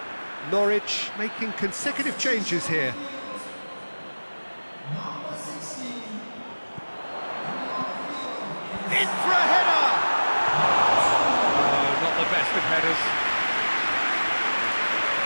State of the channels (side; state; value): both; inverted; correlation -1.00